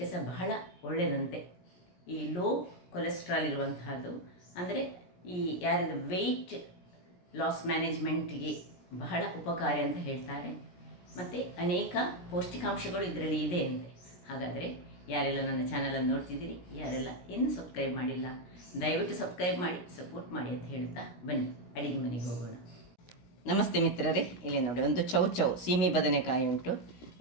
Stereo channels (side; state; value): right; late; 17 ms